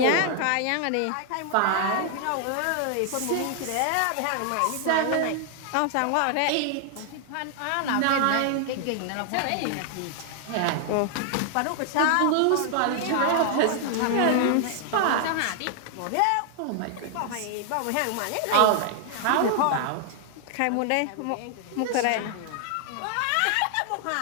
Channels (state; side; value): different; both; correlation 0.00